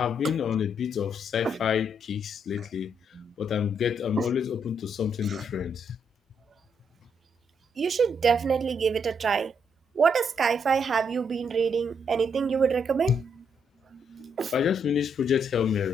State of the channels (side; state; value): both; normal; correlation 0.75